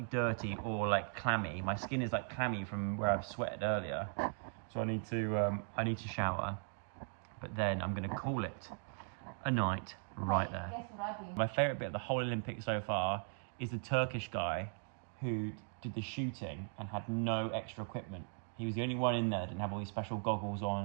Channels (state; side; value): silent; left; 52 dB below the other